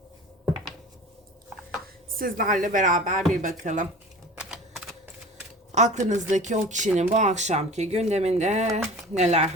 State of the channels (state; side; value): normal; both; correlation 0.39